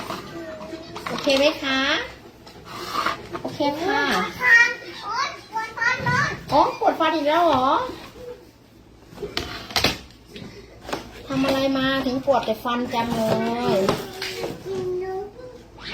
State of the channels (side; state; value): both; identical; correlation 1.00